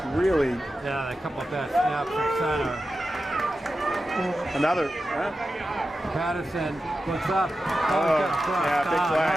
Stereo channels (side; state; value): both; normal; correlation 0.92